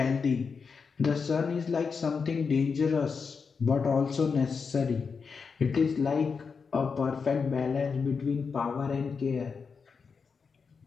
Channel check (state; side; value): quieter; right; 5.4 dB